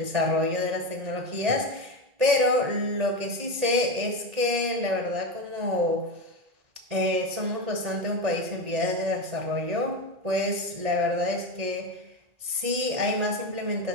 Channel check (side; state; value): left; late; 1.8 ms